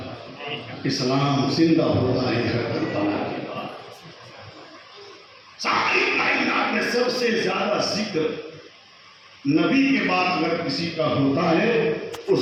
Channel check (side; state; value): both; identical; correlation 1.00